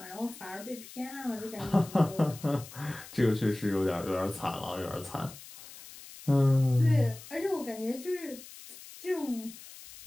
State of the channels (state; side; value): noise; left; hiss, 16 dB below the sound